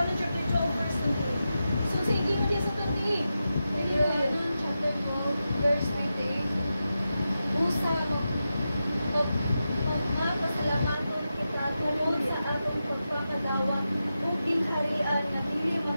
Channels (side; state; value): both; inverted; correlation -0.90